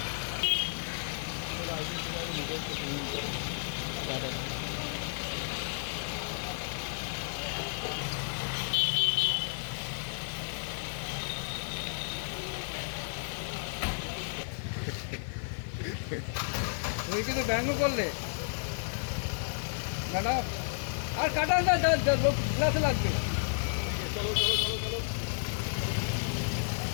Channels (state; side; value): silent; right; digital silence